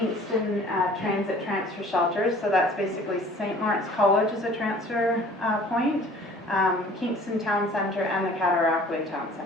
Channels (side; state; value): both; normal; correlation 0.50